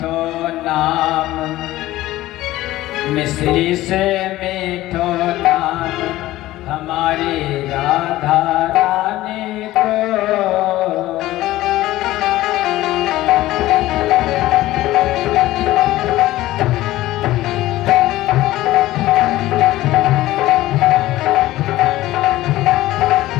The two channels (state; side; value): quieter; right; 16.3 dB